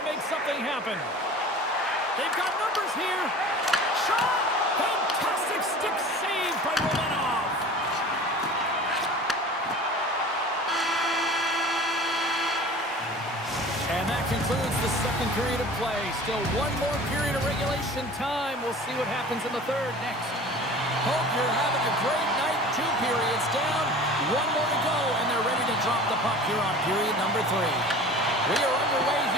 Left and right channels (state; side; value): normal; both; correlation 0.41